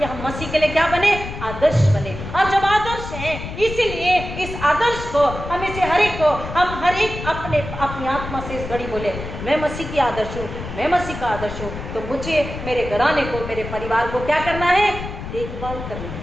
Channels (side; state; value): left; noise; rumble, 9 dB below the sound